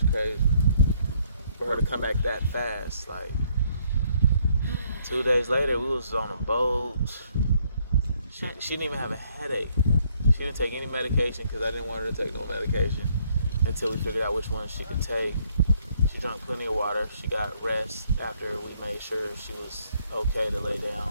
was crazy for her to come back that fast. Like 2 days later, we was on a boat. She didn't even have a headache. She didn't take any medication because I didn't want her to take no medication until we figured out which one she could take. She drank plenty of water. She got rest after we made sure she was okay to lay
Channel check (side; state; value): both; inverted; correlation -0.68